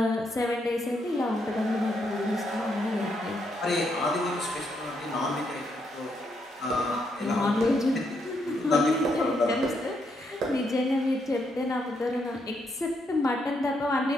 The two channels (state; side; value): normal; both; correlation 0.77